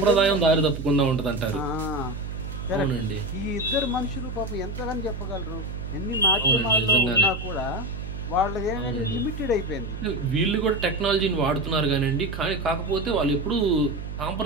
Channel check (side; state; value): right; noise; hum, 7 dB below the sound